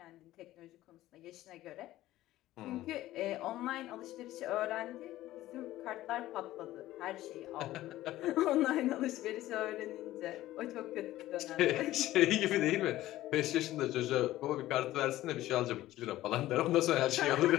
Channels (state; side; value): quieter; right; 15.4 dB